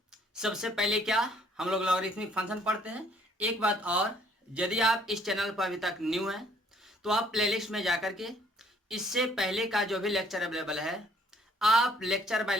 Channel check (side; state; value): both; normal; correlation 0.62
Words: सबसे पहले क्या हम लोग लॉगरिथमिक फंक्शन पढ़ते हैं। एक बात और, यदि आप इस चैनल पर अभी तक न्यू हैं तो आप प्लेलिस्ट में जाकर के इससे पहले का जो भी लेक्चर अवेलेबल है आप लेक्चर बाय